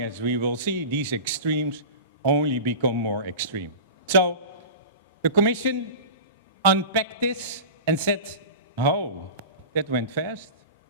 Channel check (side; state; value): both; inverted; correlation -0.33